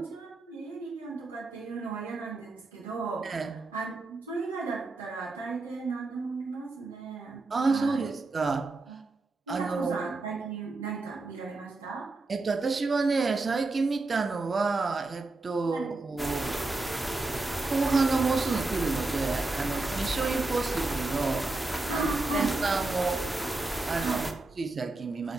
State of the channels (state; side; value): quieter; left; 3.3 dB